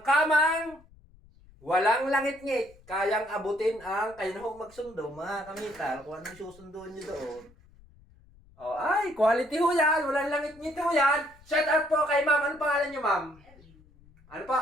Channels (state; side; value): noise; left; rumble, 26 dB below the sound